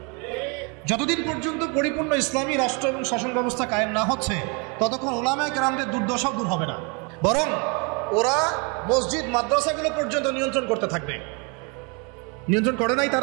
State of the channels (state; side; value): quieter; left; 32.8 dB